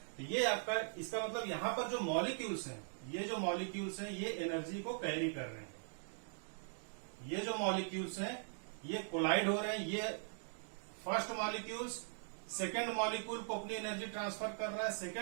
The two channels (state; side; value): silent; left; digital silence